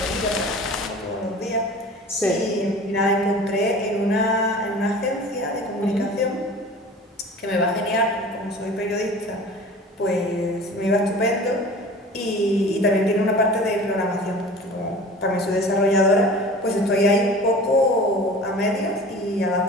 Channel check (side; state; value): both; normal; correlation 0.40